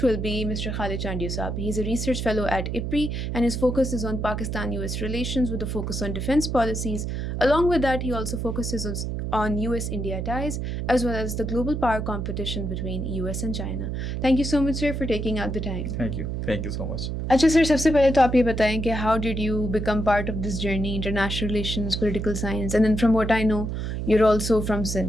will be Mr. Khalid Chandiyu Saab. He's a research fellow at IPRI, and his focus is on Pakistan-US relations with a focus on defense policies. Along with that, he also focuses on US-India ties, as well as the global power competition between US and China. Thank you so much, sir, for taking out the time. Thank you. Thank you so much. अच्छा सर, सबसे पहले तो आप ये बताएं कि how did you become part of this journey, international relations, political science, and then from what I know, you're also from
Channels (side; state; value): right; noise; hum, 3 dB below the sound